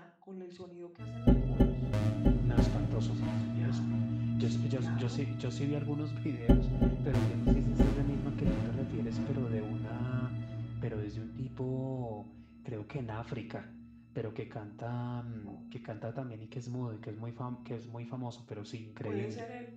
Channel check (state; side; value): identical; both; correlation 1.00